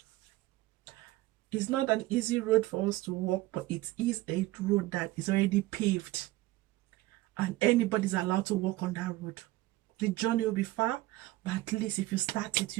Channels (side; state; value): left; quieter; 18.2 dB